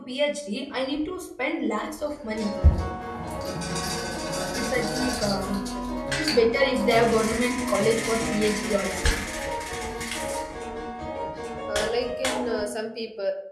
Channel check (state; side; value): identical; both; correlation 1.00